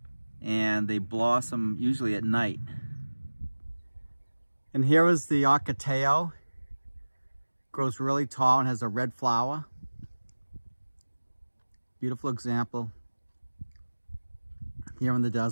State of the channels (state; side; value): inverted; both; correlation -1.00